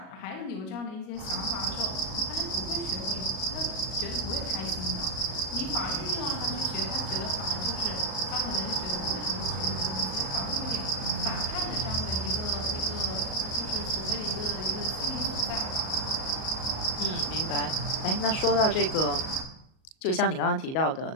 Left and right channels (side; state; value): right; late; 38 ms